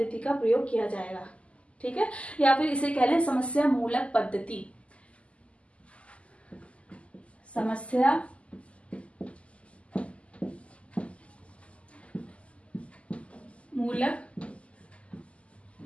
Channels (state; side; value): late; right; 0.059 ms